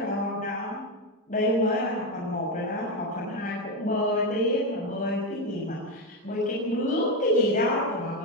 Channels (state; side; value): normal; both; correlation 0.10